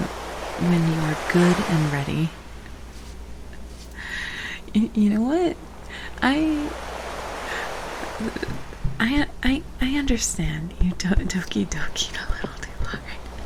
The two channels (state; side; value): identical; both; correlation 1.00